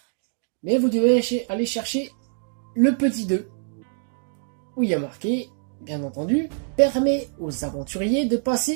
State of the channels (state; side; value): silent; left; digital silence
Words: Mais vous devez aller chercher le petit 2, où il y a marqué, bien entendu, permet aux aventuriers de